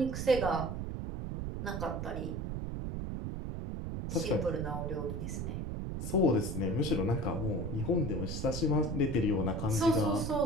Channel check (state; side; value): noise; right; rumble, 4 dB below the sound